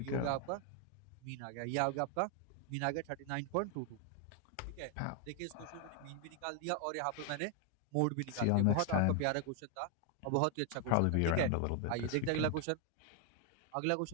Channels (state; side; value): different; both; correlation 0.00